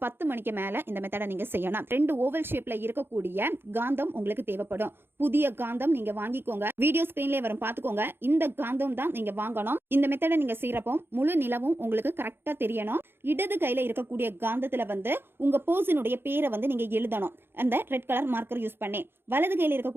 10 மணிக்கு மேலே இந்த மெத்தடை நீங்கள் செய்யணும். 2 ஓவல் ஷேப்பில் இருக்கக்கூடிய காந்தம் உங்களுக்கு தேவைப்படும். புதிய காந்தம் நீங்கள் வாங்கிக்கோங்க, வீடியோ ஸ்க்ரீன்லேயே வரும் பார்த்துக்கோங்க. இந்த காந்தம் தான் நீங்கள் வாங்கணும். இந்த மெத்தடை நீங்கள் செய்கிறப்போ முழு நிலவும் உங்களுக்கு கரெக்டாக தெரியணும். இடது கையில் இருக்கக்கூடிய காந்தத்தில் வந்து உங்கள் பர்சனுடைய பேரை வந்து நீங்கள் எழுதணும், அந்த ரெட் கலர் மார்க்கர் யூஸ் பண்ணி. வலது கையில்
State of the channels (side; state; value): left; late; 0.11 ms